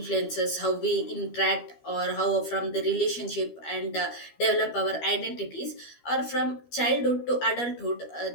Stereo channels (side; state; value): right; late; 12 ms